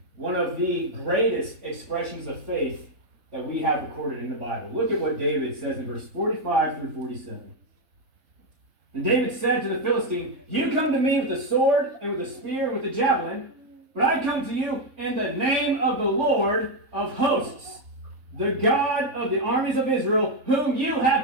one of the greatest expressions of faith that we have recorded in the Bible. Look at what David says in verse 45 through 47. And David said to the Philistine, "You come to me with a sword and with a spear and with a javelin, but I come to you in the name of the Lord of hosts, the God of the armies of Israel, whom you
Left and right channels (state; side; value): late; left; 3.5 ms